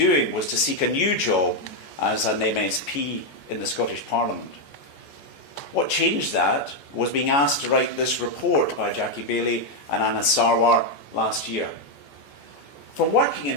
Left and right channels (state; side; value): late; right; 14 ms